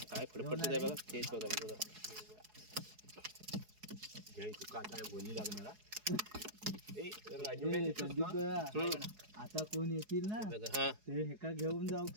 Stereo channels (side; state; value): left; late; 4.7 ms